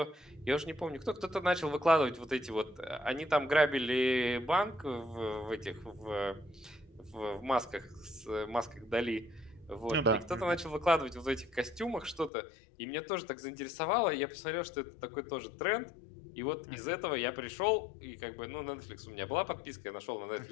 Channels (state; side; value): drops out; right; at 12.3 s